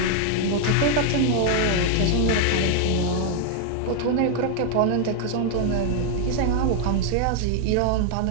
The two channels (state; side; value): different; both; correlation 0.00